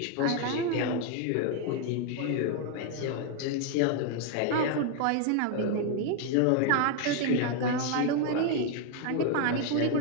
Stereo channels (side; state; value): both; different; correlation 0.00